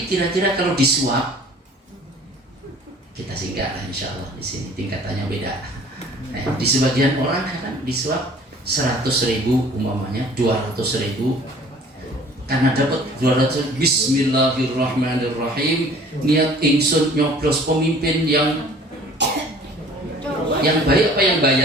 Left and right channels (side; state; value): both; normal; correlation 0.50